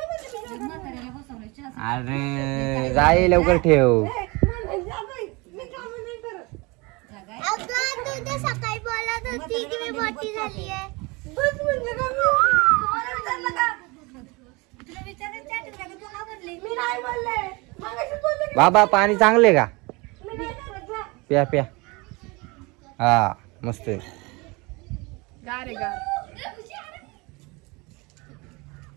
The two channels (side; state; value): left; quieter; 26.0 dB